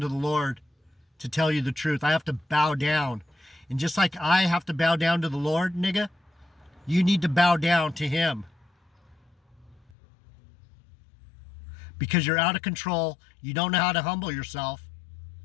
to the Lord to tell you the truth. I have to bow down. And just like I have to bow down to the Lord, nigga, you need to bow down to him. Because you're out of control. You don't know how to humble yourself.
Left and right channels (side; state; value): right; drops out; at 9.9 s